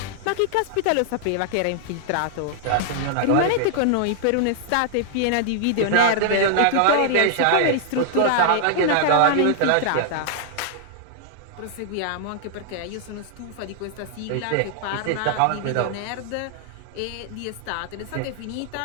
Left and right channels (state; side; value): different; both; correlation -0.01